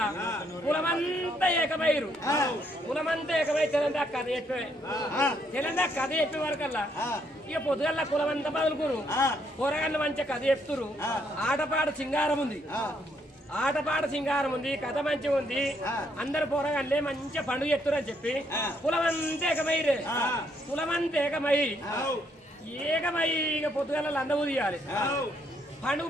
కులమంతా ఏకమయ్యారు. కులమంతా ఏకమై తెలంగాణ కథ చెప్పే తెలంగాణ కథ చెప్పే వరకల్లా ఇక పొద్దుగల్లా కులమంతా బదులుకురు. కూరగాయలు మంచిగా కథ చెప్తురు. ఆటపాట సింగారం ఉంది, ఆటపాట సింగారం ఉంది, కథ మంచిగా ఉంది. అందరు పోరగాళ్ళే మంచిగా పండుగ చెప్తురు అని చెప్పి కులమంతా ఏకమైరే. కులమంతా ఏకమై ఇక పొద్దుగల లంద ఊదియాలి. పండుగ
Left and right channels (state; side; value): normal; both; correlation 0.72